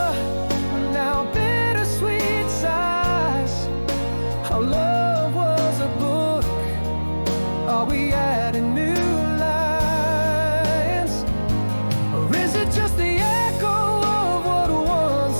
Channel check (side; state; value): both; inverted; correlation -1.00